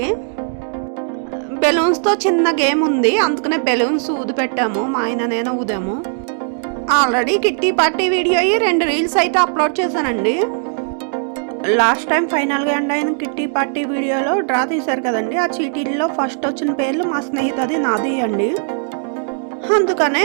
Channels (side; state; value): left; silent; digital silence